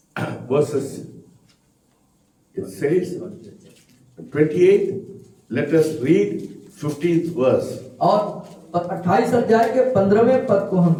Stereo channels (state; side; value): identical; both; correlation 1.00